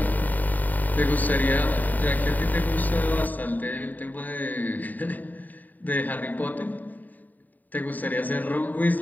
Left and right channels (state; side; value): late; right; 0.083 ms